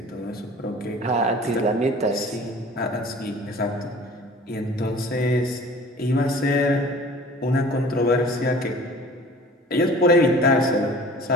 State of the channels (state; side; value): normal; both; correlation 0.46